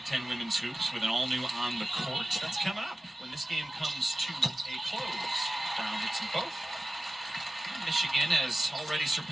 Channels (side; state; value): both; normal; correlation 0.95